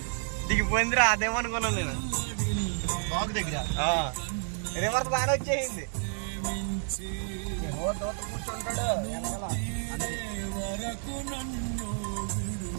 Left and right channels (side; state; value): left; silent; digital silence